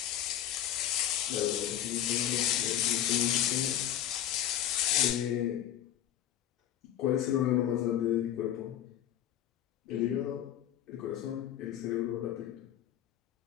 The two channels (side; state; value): right; quieter; 11.3 dB